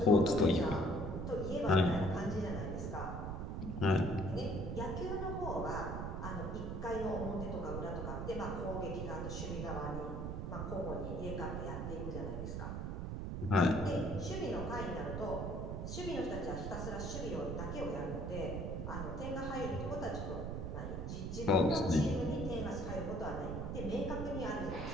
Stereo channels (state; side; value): noise; right; rumble, 4 dB below the sound